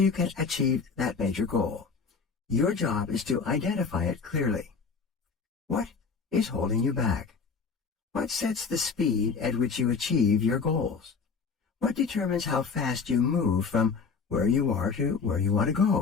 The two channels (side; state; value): right; quieter; 5.2 dB